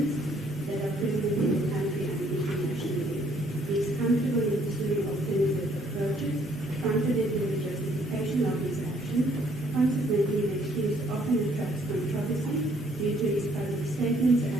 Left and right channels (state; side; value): normal; both; correlation 0.65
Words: that are present in the country and internationally. He is comfortable in pursuing alternative approaches, confident in the justification of his action. Consequently, the accused often attracts controversy due to his public statements